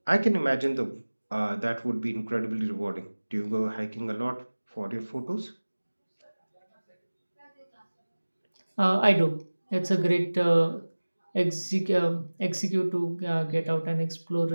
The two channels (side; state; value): both; inverted; correlation -1.00